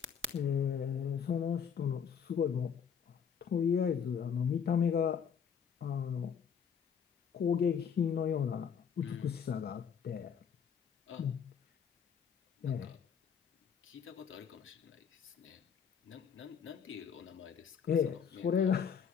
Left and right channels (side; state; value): right; quieter; 7.3 dB